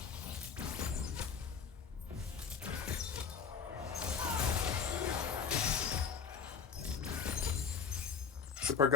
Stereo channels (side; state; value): right; quieter; 6.5 dB